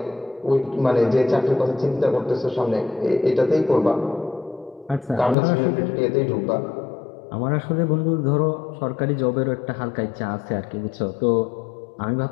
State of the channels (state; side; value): drops out; right; at 5.4 s